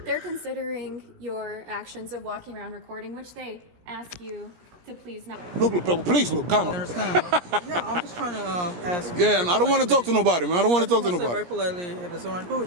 considering your actions of walking around recording, which they ask you to please not. Look, please look, come on. Understand? Yeah, I'm just trying to ask. Yeah, and I don't want to talk to nobody, man. I don't want to talk to Very nobody. politely, if it's alright, cool.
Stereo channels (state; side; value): late; left; 17 ms